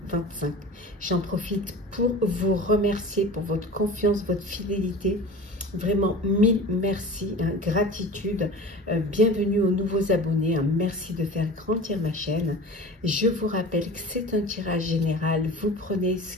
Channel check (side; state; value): both; normal; correlation 0.36